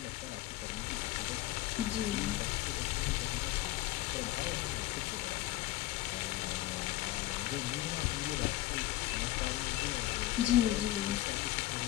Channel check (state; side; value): quieter; right; 16.1 dB